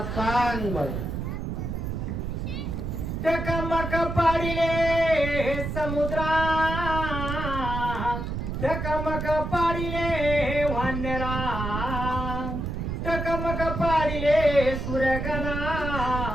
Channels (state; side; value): noise; right; rumble, 4 dB below the sound